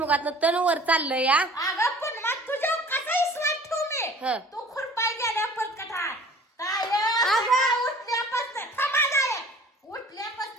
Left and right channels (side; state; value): both; normal; correlation 0.47